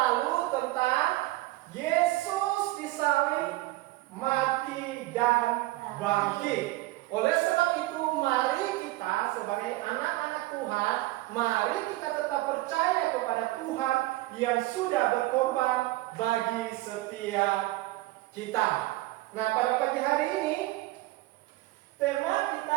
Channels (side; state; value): left; quieter; 18.6 dB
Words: tentang Yesus disalib, mati dan bangkit. Oleh sebab itu, mari kita sebagai anak-anak Tuhan, mari kita tetap percaya kepada Tuhan yang sudah berkorban bagi setiap kita. Nah, pada pagi hari ini tema kita